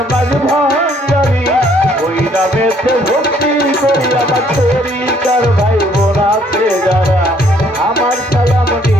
মাঝ ভাঙ্গারি ওই নামেতে ভক্তি করি আমার তরিকার ভাই বোন আছে যারা আমার সালাম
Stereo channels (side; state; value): both; normal; correlation 0.64